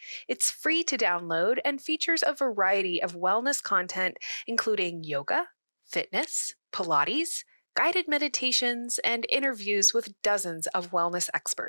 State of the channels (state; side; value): inverted; both; correlation -1.00